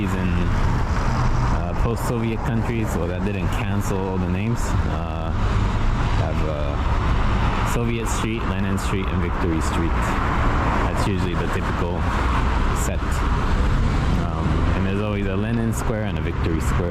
in post-Soviet countries, well, that didn't cancel all the names, have Soviet Street, Lenin Street, and Victory Street. That's usually the typical set. And there's always a Lenin Square and a Victory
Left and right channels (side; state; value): both; identical; correlation 1.00